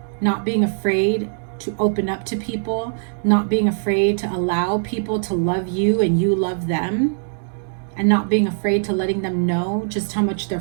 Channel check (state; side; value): silent; left; digital silence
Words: not being afraid to open up to people, not being afraid to allow people to love you and you love them, and not being afraid to letting them know just how much their